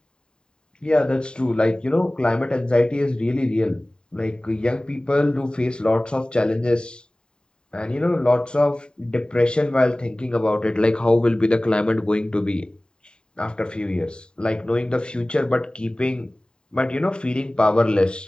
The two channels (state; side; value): late; right; 0.049 ms